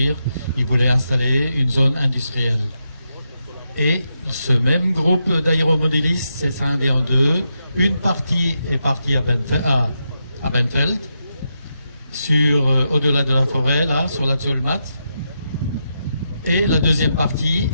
ils voulaient installer une zone industrielle. Et ce même groupe d'aéromodélistes s'est scindé en deux. Une partie est partie à Benfeld, au-delà de la forêt, là, sur la Zolmat. Et la deuxième partie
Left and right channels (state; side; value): inverted; both; correlation -0.85